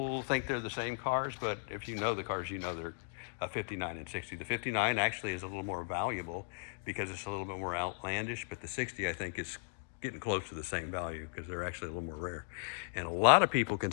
think they're the same cars, but if you know the cars, you know they're a 59 and 60. The 59 actually is a little more valuable because it's a little bit more outlandish, but the 60 I think is getting close to the same value because they're actually a little more rare. And a lot of people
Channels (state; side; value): silent; right; digital silence